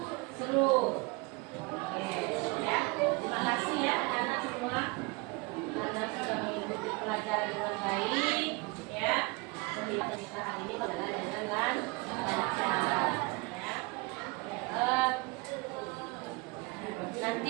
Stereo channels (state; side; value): quieter; left; 26.8 dB